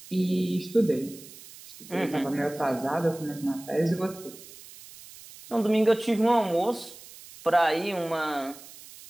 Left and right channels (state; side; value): noise; right; hiss, 18 dB below the sound